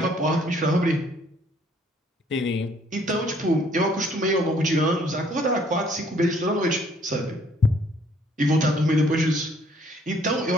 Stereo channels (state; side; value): normal; both; correlation 0.62